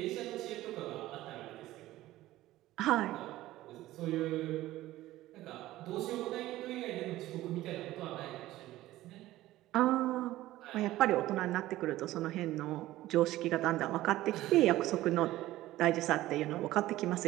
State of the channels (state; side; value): quieter; left; 15.9 dB